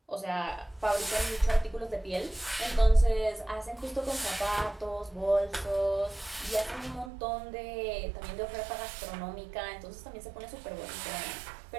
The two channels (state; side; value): drops out; left; at 7.1 s